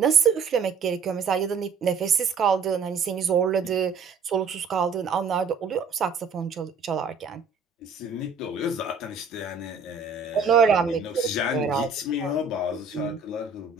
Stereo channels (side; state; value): left; quieter; 4.9 dB